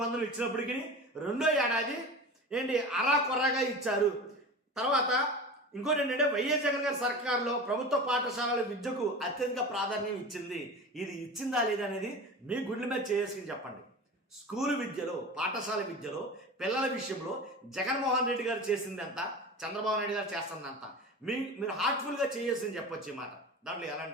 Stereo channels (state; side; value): normal; both; correlation 0.32